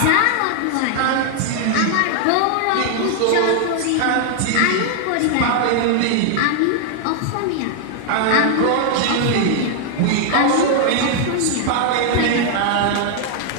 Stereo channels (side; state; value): both; different; correlation 0.00